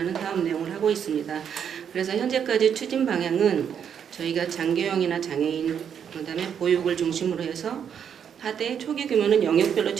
사업 내용을 하고 있습니다. 그래서 현재까지 추진 방향은 저희가 장교형이나 장애인 그다음에 보육을 중심으로 해서 하되 초기 규모는 영역별로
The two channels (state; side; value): quieter; left; 8.1 dB